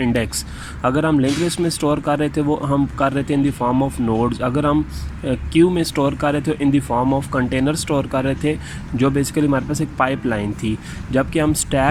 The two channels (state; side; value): identical; both; correlation 1.00